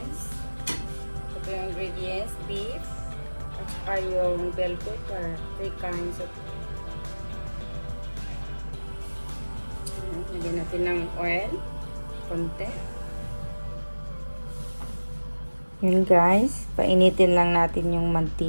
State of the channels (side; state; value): both; inverted; correlation -1.00